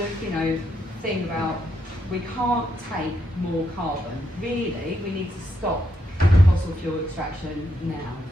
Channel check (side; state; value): both; normal; correlation 0.79